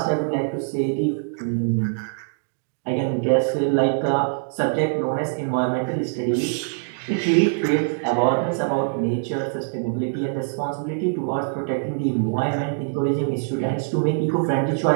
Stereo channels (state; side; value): silent; left; digital silence